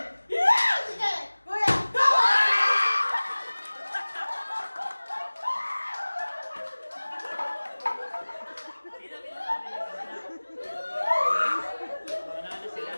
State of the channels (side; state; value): both; inverted; correlation -1.00